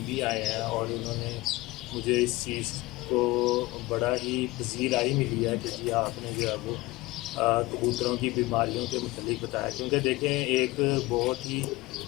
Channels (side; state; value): right; quieter; 20.7 dB